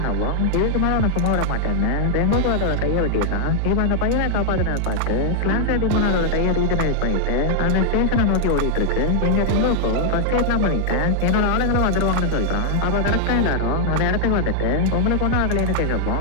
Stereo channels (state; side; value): different; both; correlation 0.00